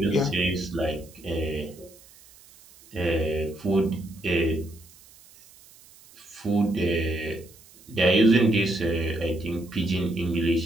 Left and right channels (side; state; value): right; noise; hiss, 24 dB below the sound